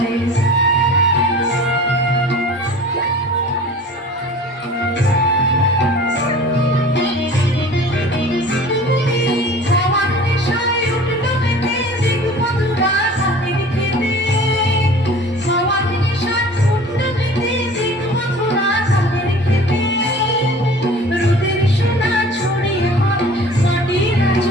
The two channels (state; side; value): normal; both; correlation 0.43